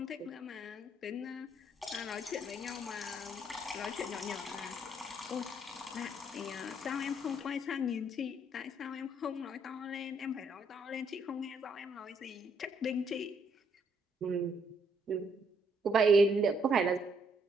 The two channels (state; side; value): normal; both; correlation 0.70